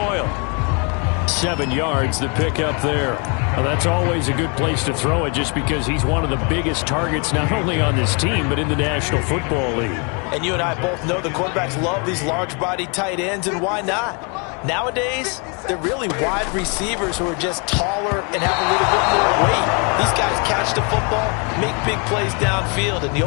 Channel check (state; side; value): quieter; right; 34.6 dB